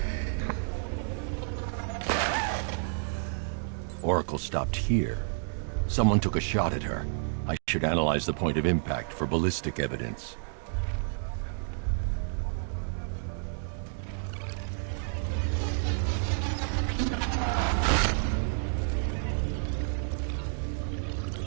Oracle stopped here. Someone took a shot at her. I should analyze the point of impact for ballistic evidence.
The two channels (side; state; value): left; silent; 57 dB below the other